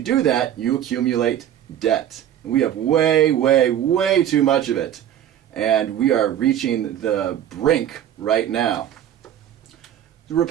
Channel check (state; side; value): quieter; left; 10.7 dB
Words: do that, you accumulate debt. We have way, way, way too much of it. And we are reaching the brink right now. The